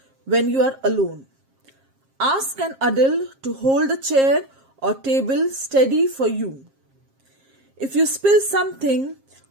when you are alone. Ask an adult to hold the chair or table steady for you. If you spill something,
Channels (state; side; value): late; left; 7.5 ms